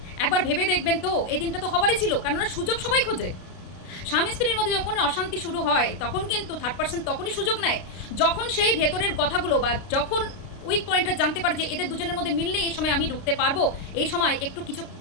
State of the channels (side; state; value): right; late; 33 ms